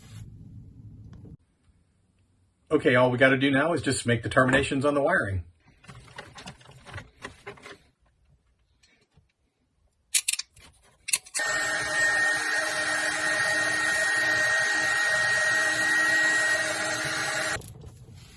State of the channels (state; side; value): identical; both; correlation 1.00